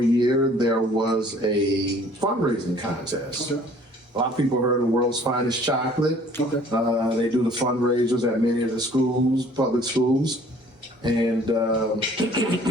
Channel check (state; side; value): normal; both; correlation 0.54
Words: year, there was a fundraising contest. Okay. A lot of people heard of World's Finest Chocolate. Okay. They do the fundraisers at many of the schools, public schools. And there